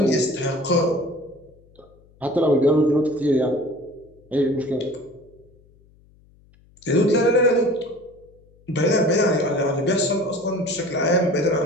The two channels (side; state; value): left; noise; hum, 29 dB below the sound